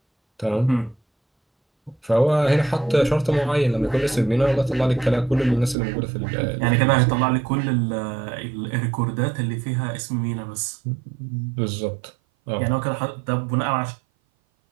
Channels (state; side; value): drops out; left; at 5.8 s